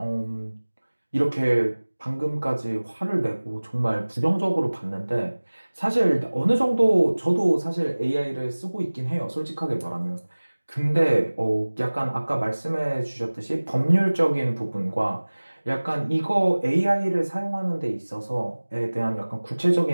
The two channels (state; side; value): inverted; both; correlation -1.00